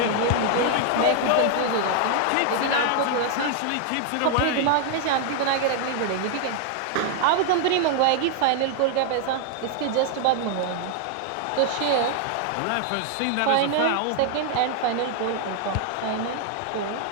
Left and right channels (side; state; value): both; different; correlation 0.00